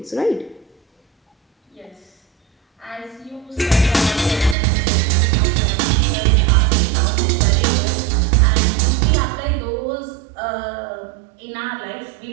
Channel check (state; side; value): drops out; left; at 4.5 s